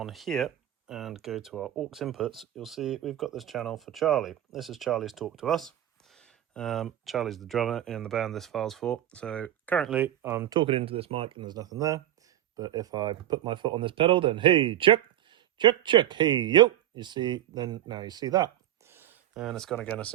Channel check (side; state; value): left; quieter; 12.3 dB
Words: here and go to our aux inputs, you'll see we've got this channel for Charlie. This is Charlie's talk to us. Charlie's the drummer in the band this file's for. So currently I'm talking into this mic and there's nothing there. But if I put my foot on this pedal, then hey, check, check, check, hey, yo, you see, then now you see that. And it's gone again as